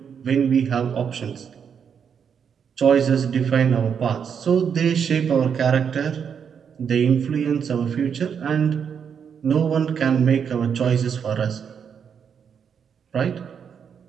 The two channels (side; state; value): left; quieter; 7.3 dB